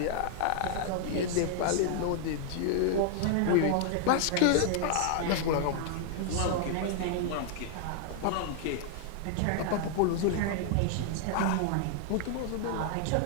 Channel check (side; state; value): both; different; correlation 0.00